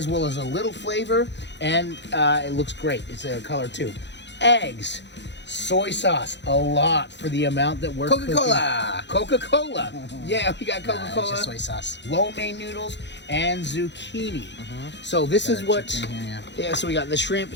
well as a little flavor, and it looks great. It's a color too. Eggs, soy sauce, a lot for the amount that we're Coca-Cola. cooking. Coca-Cola. Yeah, we got It's Coca-Cola. just soy sauce. Lo mein noodles and zucchini. So this is what. Chicken here, Yeah, so we got the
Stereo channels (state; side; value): late; right; 0.52 ms